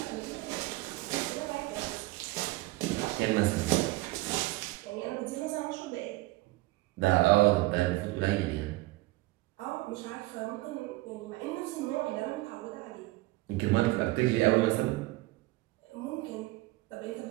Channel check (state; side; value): quieter; left; 20.0 dB